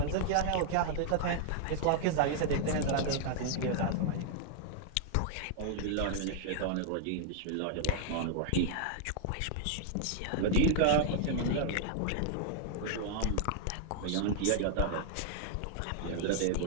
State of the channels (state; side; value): different; both; correlation 0.00